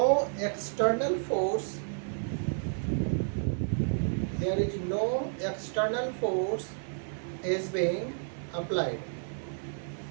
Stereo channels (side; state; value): left; silent; 57 dB below the other